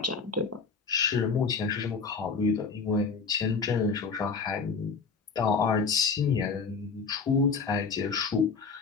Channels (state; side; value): quieter; right; 5.0 dB